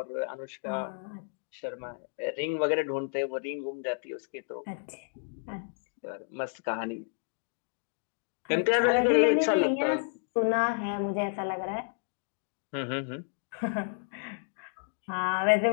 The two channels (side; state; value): right; silent; digital silence